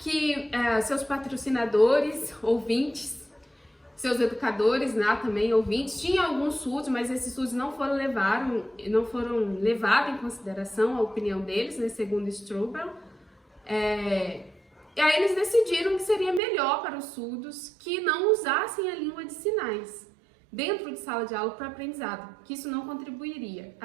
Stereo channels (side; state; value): left; drops out; at 16.4 s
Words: seus patrocinadores, ouvintes, seus educadores, né, também ouvintes, tinha alguns surdos, mas esses surdos não foram levados em consideração a opinião deles, né, segundo Strobel. E aí eles decidiram que seria melhor para os surdos que não usassem a língua de sinais dentro de sala de aula para aprendizado, que isso não contribuiria.